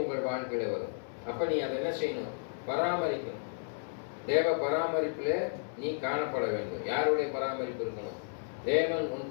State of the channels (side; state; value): right; silent; 56 dB below the other